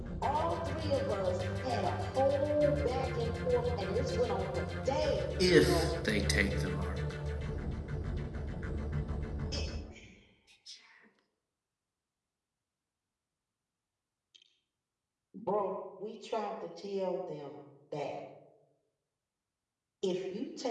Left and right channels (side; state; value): both; identical; correlation 1.00